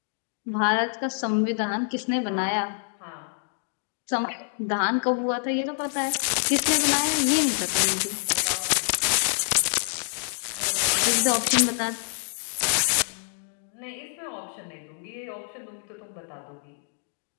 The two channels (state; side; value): silent; right; digital silence